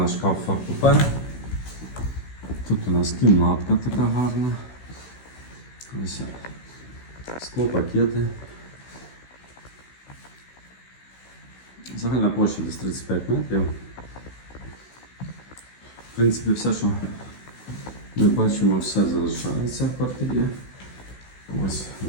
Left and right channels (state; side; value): late; right; 16 ms